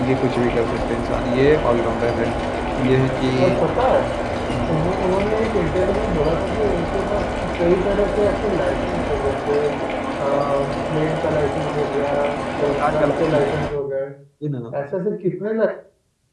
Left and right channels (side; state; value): both; identical; correlation 1.00